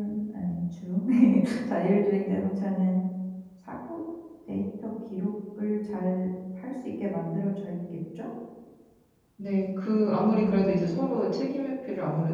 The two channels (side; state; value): both; identical; correlation 1.00